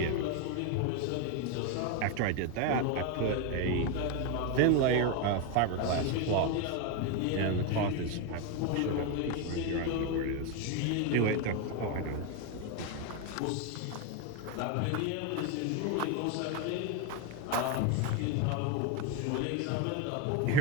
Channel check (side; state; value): both; different; correlation 0.02